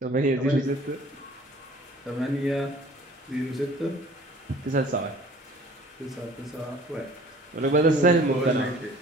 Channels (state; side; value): normal; both; correlation 0.50